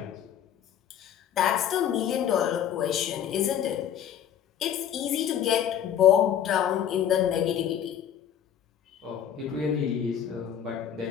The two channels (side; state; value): right; quieter; 9.6 dB